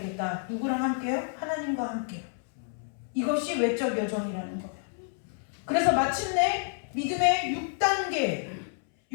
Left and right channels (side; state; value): right; silent; 58 dB below the other